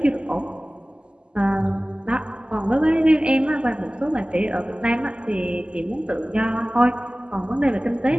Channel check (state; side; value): late; left; 0.050 ms